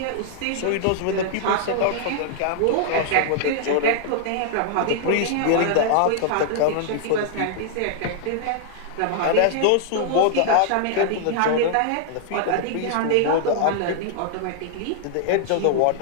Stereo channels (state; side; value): different; both; correlation -0.01